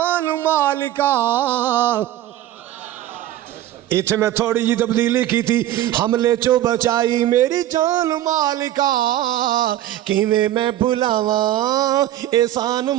مالکا اتھے میں تھوڑی جی تبدیلی کی تھی حملے چو بچائی میری جان مالکا کیویں میں بھلاواں احسان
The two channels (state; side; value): quieter; left; 13.3 dB